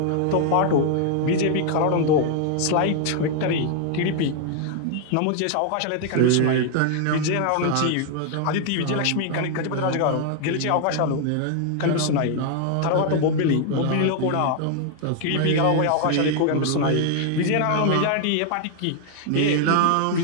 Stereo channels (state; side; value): different; both; correlation 0.00